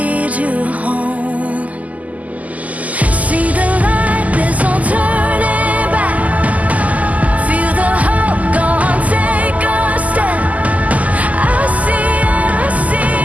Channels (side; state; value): left; late; 0.075 ms